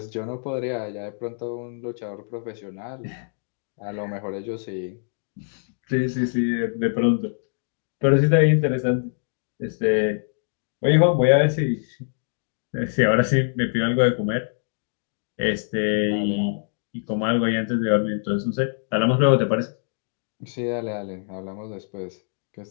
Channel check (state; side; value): silent; right; digital silence